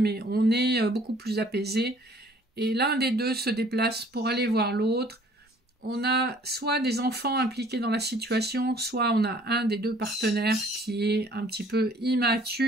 on est beaucoup plus apaisé, et l'un des deux se déplace pour aller voir l'autre. On a soit des enfants impliqués dans la situation, soit on a un des deux partenaires qui est un petit peu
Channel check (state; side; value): normal; both; correlation 0.56